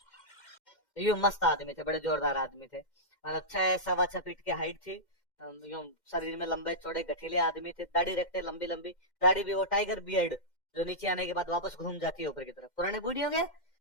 यूं मस्त आदमी थे, बड़े जोरदार आदमी थे। 6-6.25 फीट की हाइट थी। यूं शरीर में लंबे चौड़े गठीले आदमी थे, दाढ़ी रखते लंबी लंबी, दाढ़ी भी वो टाइगर बियर्ड जो नीचे आने के बाद वापस घूम जाती है ऊपर की तरफ। पुराने बूढ़ियों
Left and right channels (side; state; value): right; late; 2.1 ms